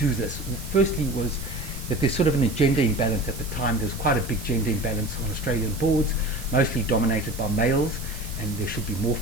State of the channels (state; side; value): noise; right; hiss, 14 dB below the sound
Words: this. Firstly was that there's sort of an gender imbalance at the time. There was quite a big gender imbalance on Australian boards, mostly dominated by males, and there should be more